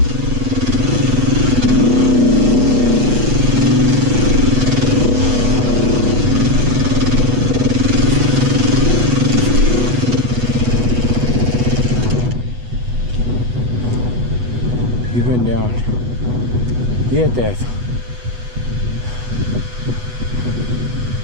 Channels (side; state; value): left; late; 8.1 ms